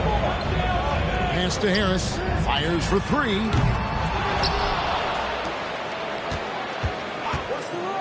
Pass to Harris. Fires for 3.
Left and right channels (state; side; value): identical; both; correlation 1.00